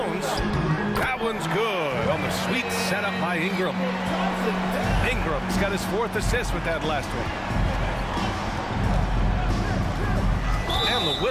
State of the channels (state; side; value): identical; both; correlation 1.00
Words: That one's good on the sweet setup by Ingram. Ingram's got his 4th assist with that last one. And the